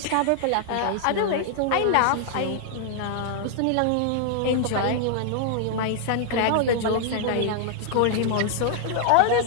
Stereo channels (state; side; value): different; both; correlation -0.01